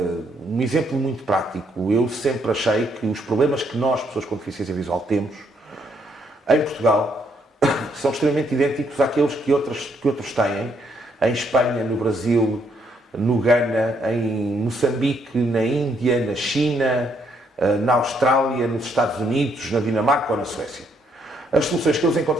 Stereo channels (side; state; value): both; normal; correlation 0.72